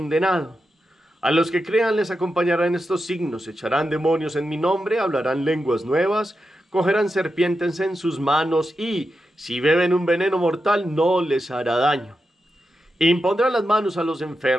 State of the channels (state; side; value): normal; both; correlation 0.88